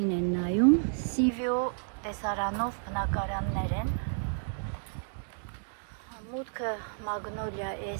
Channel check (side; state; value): left; silent; digital silence